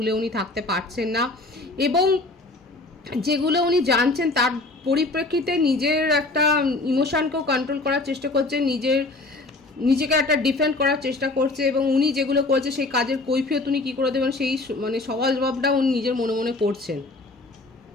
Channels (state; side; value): quieter; right; 3.1 dB